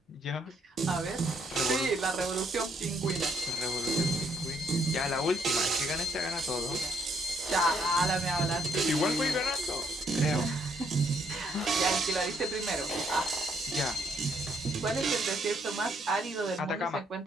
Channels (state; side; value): normal; both; correlation 0.70